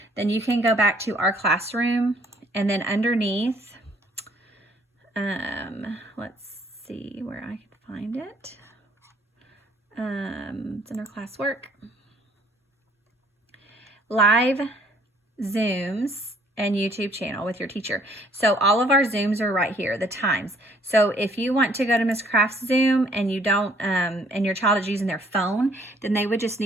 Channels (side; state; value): both; normal; correlation 0.61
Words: then you can go back to our classroom, and then underneath, let's see where I can find it. It's under classwork. Live Zooms and YouTube channel with your teacher. So all of our Zooms are right here, the times. So if you want to go to Miss Craft's Zoom and you don't, and your child is using their phone, then they would just